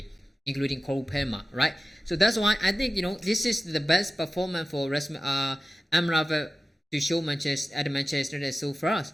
including Cole Palmer. Right, so that's why I think this is the best performance for Amrabat to show Manchester United so far.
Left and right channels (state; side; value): normal; both; correlation 0.95